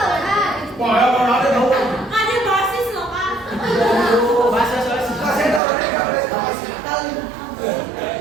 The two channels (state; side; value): drops out; left; at 5.6 s